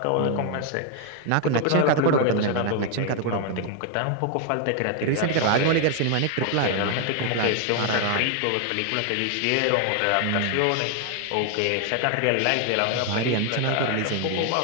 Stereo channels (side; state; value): both; different; correlation 0.01